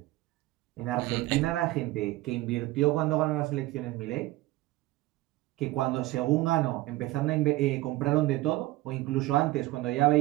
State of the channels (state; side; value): quieter; left; 18.0 dB